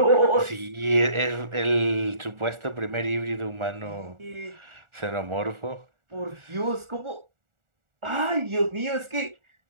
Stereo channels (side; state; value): left; late; 1.4 ms